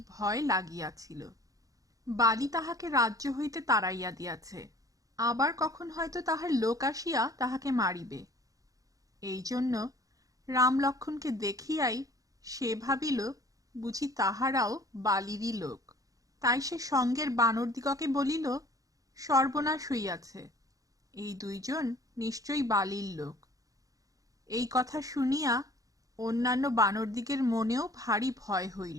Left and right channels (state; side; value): late; left; 0.17 ms